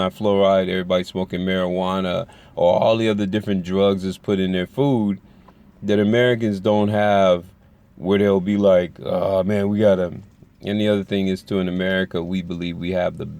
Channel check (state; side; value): identical; both; correlation 1.00